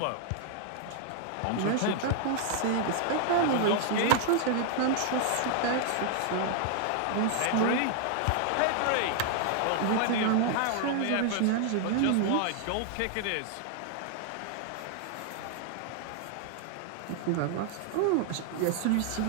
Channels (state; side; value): different; both; correlation 0.00